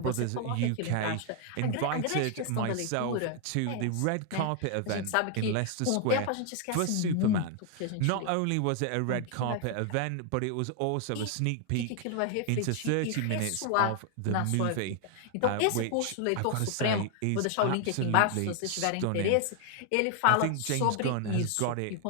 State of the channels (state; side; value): different; both; correlation 0.00